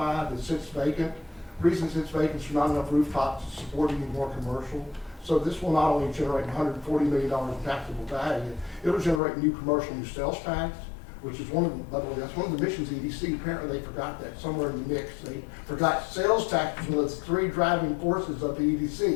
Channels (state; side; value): drops out; right; at 9.2 s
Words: that sits vacant. The reason it sits vacant is there's not enough rooftops to support any more commercial. So this will not only generate $140 million in taxable value, it'll generate new commercial, new sales tax, which is by the way, that's one of the missions of EDC. Apparently they forgot that somewhere in the mix. They forgot sales tax was one of the three driving forces of the